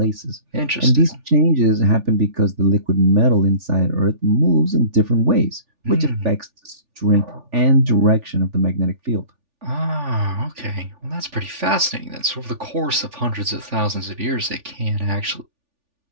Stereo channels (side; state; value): left; late; 3.4 ms